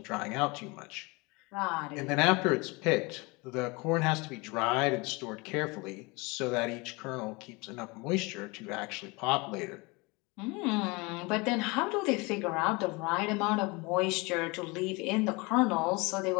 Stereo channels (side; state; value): right; quieter; 26.2 dB